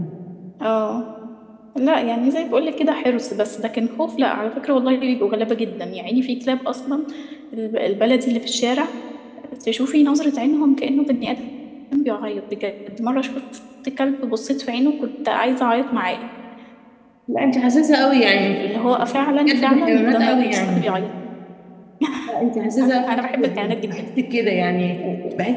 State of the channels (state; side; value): identical; both; correlation 1.00